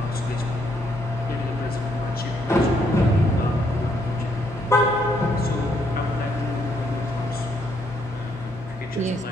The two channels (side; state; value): both; normal; correlation 0.72